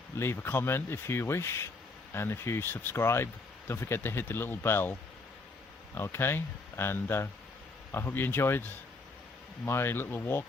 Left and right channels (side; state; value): right; quieter; 3.6 dB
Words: leave a comment if you wish. And if you subscribe, don't forget to hit the little bell. Okay, and I hope you enjoyed my little